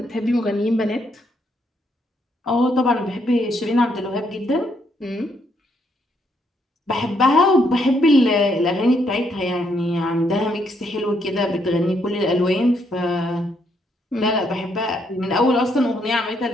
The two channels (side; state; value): both; normal; correlation 0.74